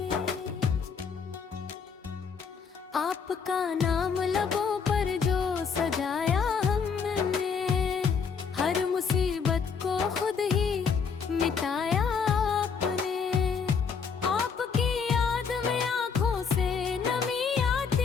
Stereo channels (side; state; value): right; quieter; 6.0 dB